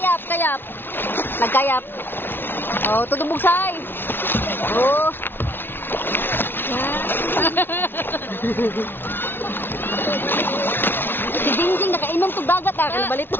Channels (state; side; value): late; right; 0.10 ms